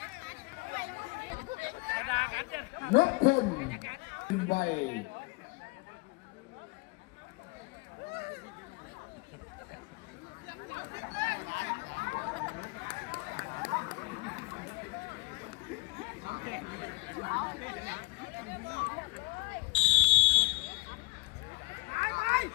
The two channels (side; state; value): right; quieter; 25.0 dB